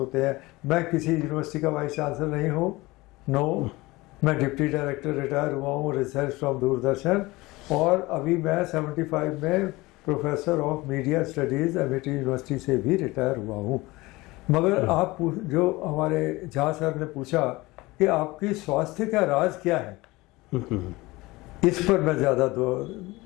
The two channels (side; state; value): right; quieter; 21.2 dB